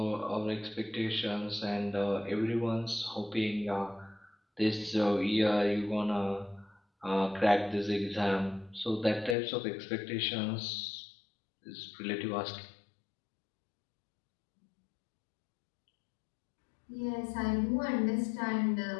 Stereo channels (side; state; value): right; drops out; at 9.3 s